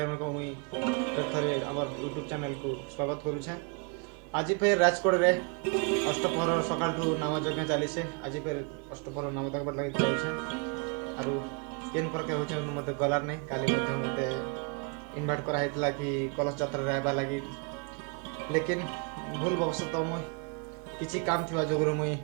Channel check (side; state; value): left; quieter; 34.4 dB